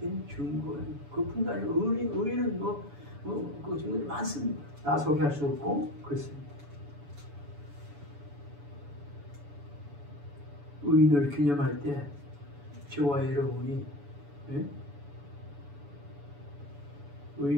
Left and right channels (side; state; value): left; late; 7.0 ms